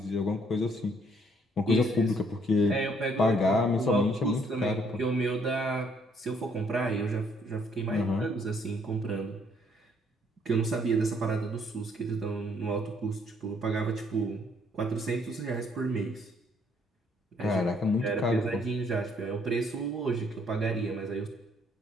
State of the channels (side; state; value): both; normal; correlation 0.66